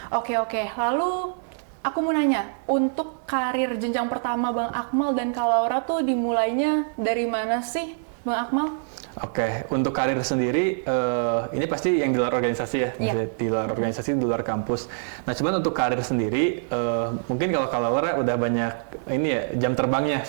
Oke. Lalu aku mau nanya, untuk karir jenjang pertama Bang Akmal dan Kak Laura tuh dimulainya dari mana sih Bang Akmal? Oke, untuk karir sendiri, ini pasti yang di luar organisasi ya, di luar organisasi, di luar kampus. Nah, cuman untuk karir sendiri, mungkin kalau Laura udah banyak ini ya jam terbangnya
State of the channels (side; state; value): left; silent; digital silence